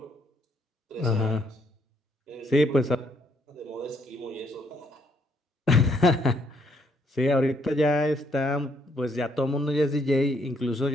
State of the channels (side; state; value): both; normal; correlation 0.71